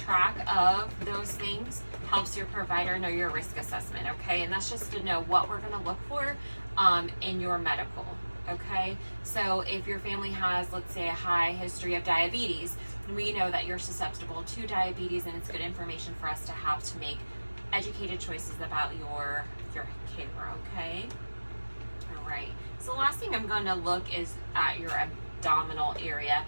of those things helps your provider know your risk assessment, okay? And that's just to know what we're gonna look for in your medical, okay? So if your family has, let's say, a high history of diabetes, we know that you're susceptible to diabetes, and it's good information for us to have to make educated choices about your care, okay? All right. So the last thing I'm going to look is at your abdominal area.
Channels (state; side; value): inverted; both; correlation -1.00